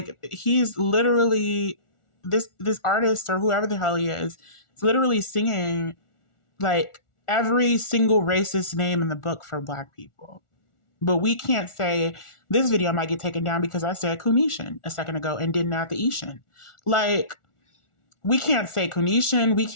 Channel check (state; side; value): late; right; 1.4 ms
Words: he's literally this artist or whoever the hell he is literally singing like every single racist name in the book for Black people. But we can't say this video might get taken down because I said Kunishan a second ago and didn't add the Ishan. Like, we can't say Kunishan. We